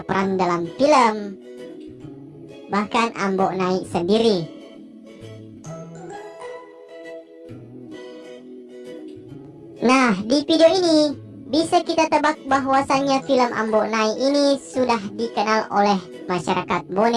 dalam film, bahkan Ambo Nai sendiri. Nah, di video ini bisa kita tebak bahwasannya film Ambo Nai ini sudah dikenal oleh masyarakat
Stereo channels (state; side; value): identical; both; correlation 1.00